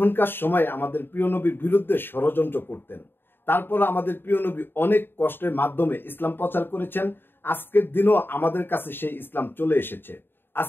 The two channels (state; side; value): late; right; 0.10 ms